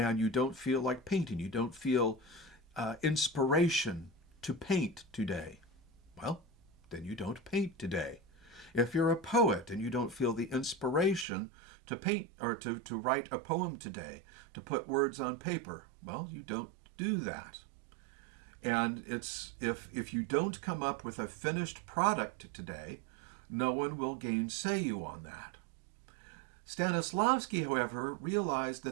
you don't feel like painting, you don't feel inspiration to paint today. Well, then you don't paint today. If you're a poet and you don't feel the inspiration to paint or to write a poem today, to put words on paper, well, you don't do that. And it's if you don't come up with a finished product today, no one will gainsay you on that. Stanislavsky, however, realized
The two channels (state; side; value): drops out; left; at 11.2 s